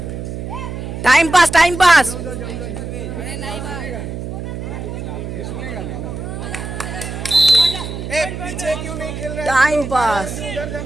Time pass, time pass. ए पीछे क्यों नहीं खेल रहा है? Time pass. उधर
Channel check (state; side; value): noise; right; hum, 7 dB below the sound